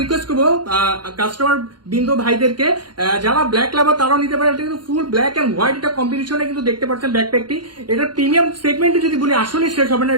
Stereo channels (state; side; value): late; left; 0.71 ms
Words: করবো কাস্টমার বিন্দু ভাইদেরকে, যারা ব্ল্যাক লাভার তারাও নিতে পারে। এটা কিন্তু ফুল ব্ল্যাক এন্ড হোয়াইট এটা কম্বিনেশনে কিন্তু দেখতে পাচ্ছেন ব্যাকপ্যাকটি। এটা প্রিমিয়াম সেগমেন্টে যদি বলি আসলে শেষ হবে না।